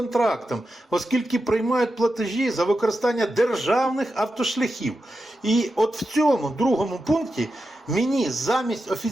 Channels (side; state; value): both; normal; correlation 0.89